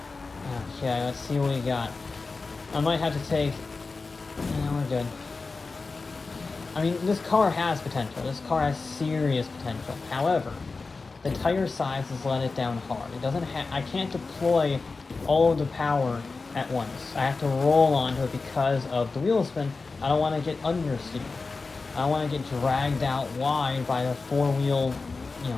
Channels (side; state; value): right; quieter; 4.0 dB